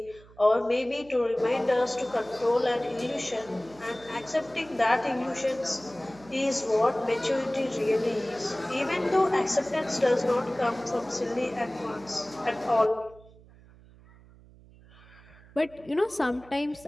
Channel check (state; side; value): noise; right; hum, 24 dB below the sound